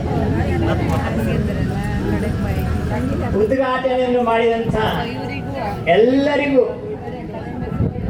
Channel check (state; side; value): identical; both; correlation 1.00